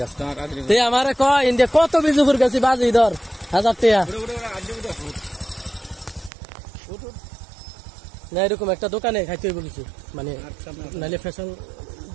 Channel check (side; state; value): left; drops out; at 6.3 s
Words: রাস্তা আমারে কয় ইন্ডিয়া কত বিজুপুর গেছি বাজি ধর 1000 টাকা না এরকম একটা দোকানে খাইতে হইব কিছু মানে নাইলে ফ্যাশন